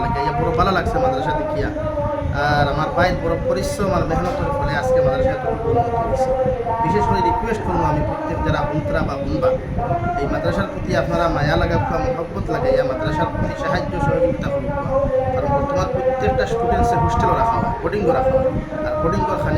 লাগে আইয়া বড় ভালো লাগছে মাদ্রাসা দেখিয়া। আর আমার ভাইয়ের বড় পরিশ্রম আর মেহনতের ফলে আজকে মাদ্রাসা এতটুকু উন্নত হয়েছে। বিশেষ করে রিকোয়েস্ট করবো আমি প্রত্যেক যারা বন্ধুরা বা বন্ধুবা এই মাদ্রাসার প্রতি আপনারা মায়া লাগাবা, মহব্বত লাগাইয়া মাদ্রাসার প্রতি সাহায্য সহযোগিতা করুক। কারণ বর্তমান প্রত্যেকটা স্টুডেন্টসের হোস্টেলও রাখা হয়, বোর্ডিংও রাখা হয়, আর বোর্ডিংয়ের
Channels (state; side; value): identical; both; correlation 1.00